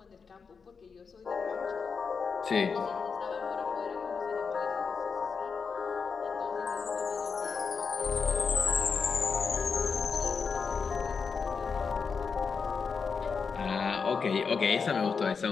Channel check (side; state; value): right; quieter; 5.5 dB